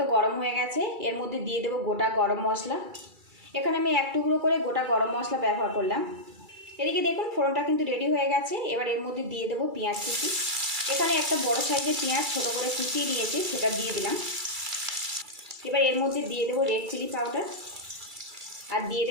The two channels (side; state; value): left; late; 2.3 ms